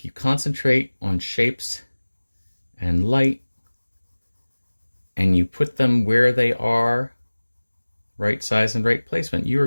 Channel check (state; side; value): inverted; both; correlation -1.00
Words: you concentrate on shapes and light, and you put them where they are, right size and right placement, you are